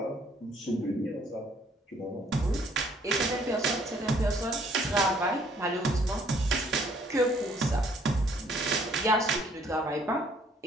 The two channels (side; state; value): both; normal; correlation 0.63